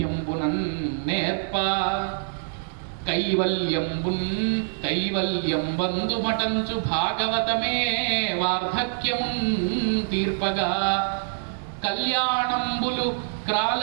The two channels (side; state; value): left; silent; 62 dB below the other